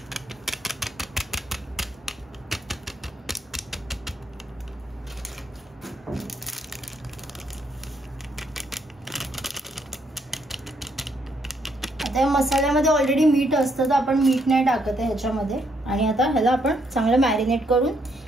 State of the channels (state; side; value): normal; both; correlation 0.73